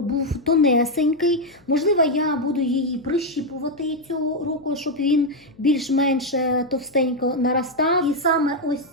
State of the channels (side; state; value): left; noise; hum, 30 dB below the sound